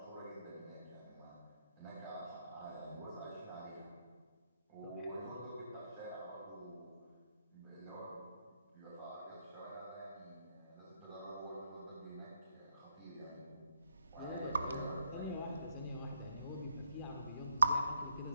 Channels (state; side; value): inverted; both; correlation -0.76